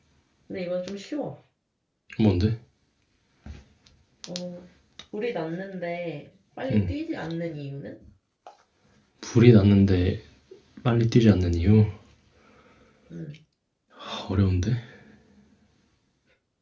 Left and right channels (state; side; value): identical; both; correlation 1.00